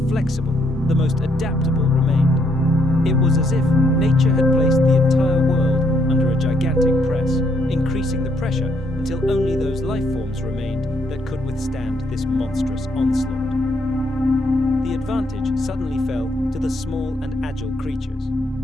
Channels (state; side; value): normal; both; correlation 0.72